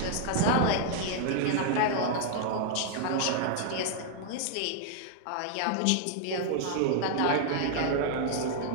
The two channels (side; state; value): both; different; correlation 0.00